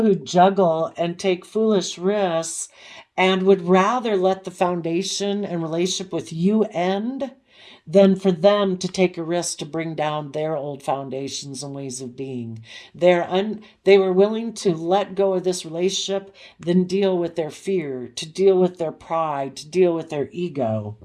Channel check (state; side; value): identical; both; correlation 1.00